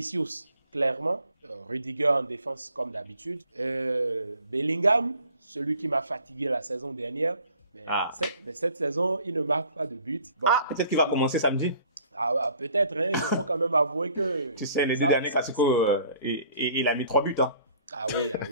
clairement, Rudiger en défense comme d'habitude, Bellingham, celui qui m'a fatigué la saison dernière. Mais cette saison, il ne marque pas de but. Bon. Peut-être qu'il va commencer samedi. Peut-être, hein. Il faut quand même avouer que... Tu sais, les deux derniers classicos, il a mis 3 buts. Hein. Ah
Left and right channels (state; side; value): inverted; both; correlation -0.55